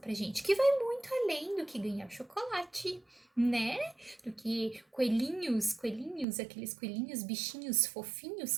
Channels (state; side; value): drops out; left; at 6.2 s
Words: pra gente, que vai muito além do que ganhar chocolate, né? Do que coelhinhos, aqueles coelhinhos, bichinhos fofinhos